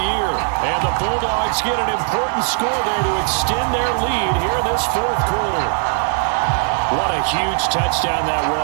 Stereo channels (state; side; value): silent; left; digital silence